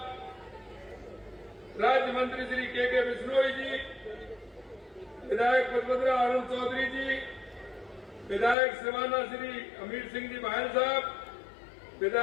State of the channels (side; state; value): right; drops out; at 8.6 s